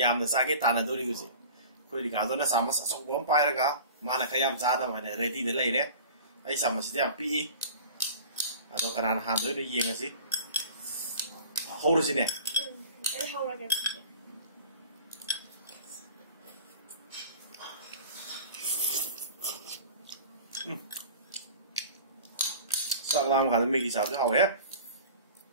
sake tana dori husi akhoi Ricardo na samas asok bom pairaga mana kayam chada mane ready de leire ai samas ti am pi ado karan han doi yengasi howrusine ai howrage sak lam kan Maggie sao chứ hầu á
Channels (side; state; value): both; inverted; correlation -0.41